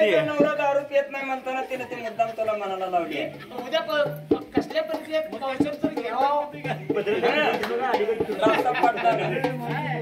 नवरा दारू पित नाही म्हणताना तिने ते मुद्दाम तुला मनाला लावली. उद्या कसल्या परिस्थितीत पावसाळ्यात तर घ्यावं. रास्ता पडला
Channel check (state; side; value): identical; both; correlation 1.00